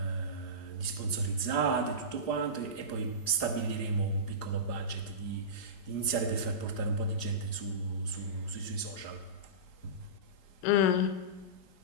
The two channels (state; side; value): late; right; 4.9 ms